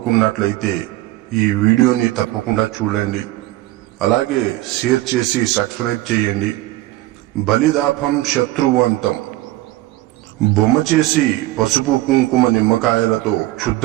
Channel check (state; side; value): quieter; left; 17.3 dB